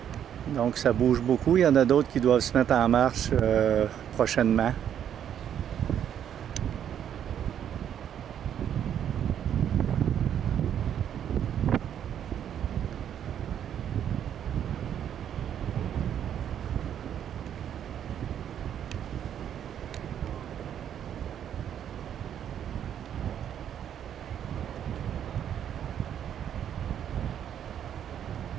Donc, ça bouge beaucoup. Il y en a d'autres qui doivent se mettre en marche prochainement.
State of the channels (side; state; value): left; quieter; 9.5 dB